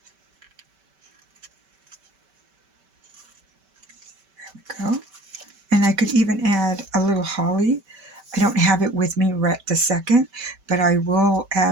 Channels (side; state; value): left; late; 5.2 ms